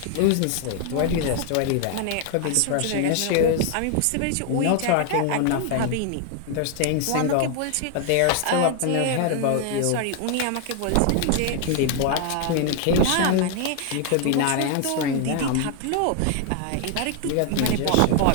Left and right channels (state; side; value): different; both; correlation 0.00